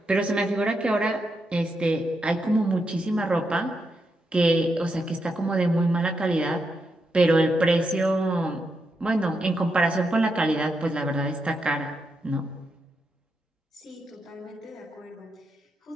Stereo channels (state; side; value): normal; both; correlation 0.83